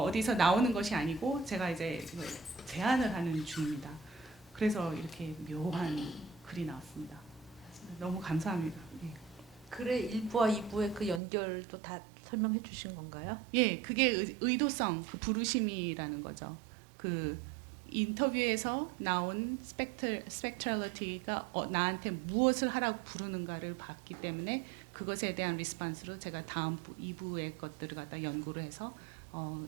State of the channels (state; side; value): drops out; left; at 11.2 s